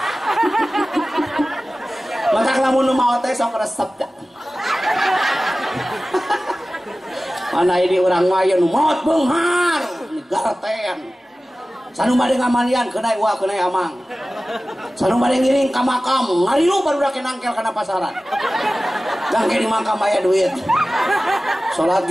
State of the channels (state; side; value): normal; both; correlation 0.96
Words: maka lamun nu maot teh sok resep da. Mana ini urang maya nu maot beunghar garten. Sanu bade ngamalian keunai uah keunai amang. Sanu bade ngiring ka makam ngarilu barudak nangkel kana pasaran. Gangke di makam aya duit. Salat